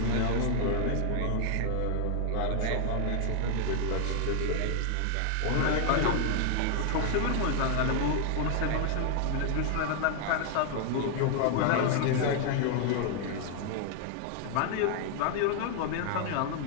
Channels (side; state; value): both; different; correlation 0.00